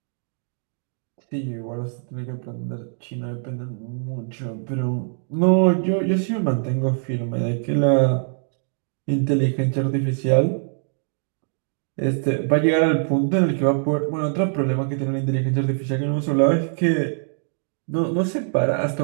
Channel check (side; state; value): left; silent; digital silence